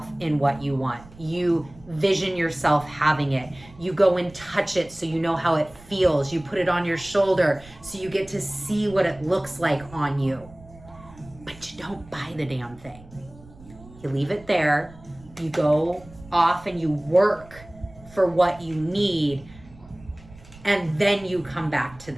in what you want. You vision yourself having it. You go and touch it so you know how it feels. You put it on your shoulder so you get to see what it looks like on you. But you don't buy the damn thing. You leave it there. You go off and you work for what you need. And then you come back to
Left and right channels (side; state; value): right; noise; rumble, 21 dB below the sound